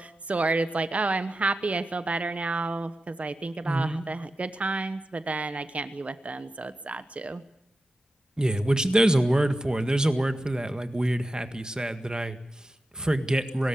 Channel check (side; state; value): both; normal; correlation 0.92